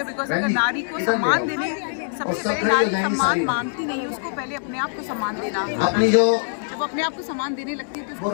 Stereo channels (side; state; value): right; silent; digital silence